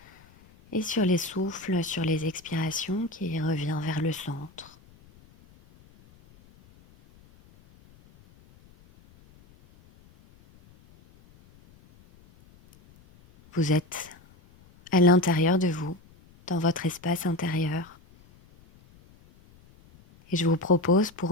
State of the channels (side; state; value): left; noise; rumble, 27 dB below the sound